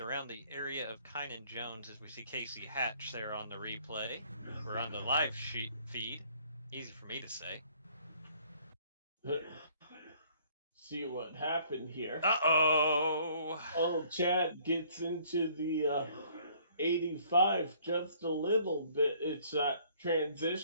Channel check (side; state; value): both; inverted; correlation -0.59